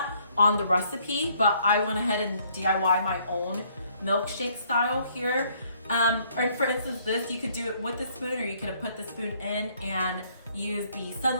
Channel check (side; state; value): both; inverted; correlation -0.65